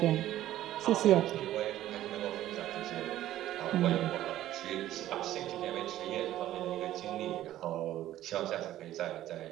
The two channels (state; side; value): quieter; left; 13.5 dB